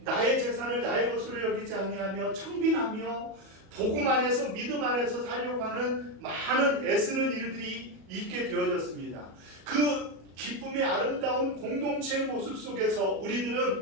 재산을 나의 것으로 여기지 아니하며 청빈하며 복음 안에서 믿음 안에서 살려고 하는 많은 애쓰는 일들이 있게 되어졌습니다. 그 기쁨의 아름다운 공동체의 모습 속에서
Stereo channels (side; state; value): left; late; 37 ms